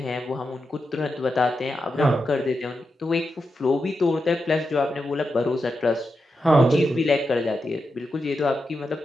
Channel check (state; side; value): normal; both; correlation 0.88